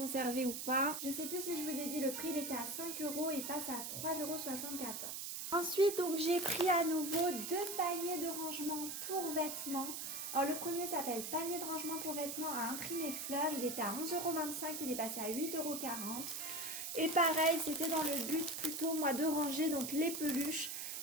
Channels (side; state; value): right; noise; hiss, 5 dB below the sound